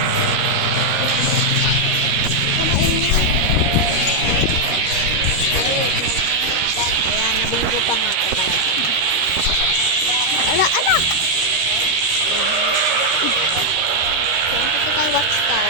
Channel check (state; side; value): late; left; 13 ms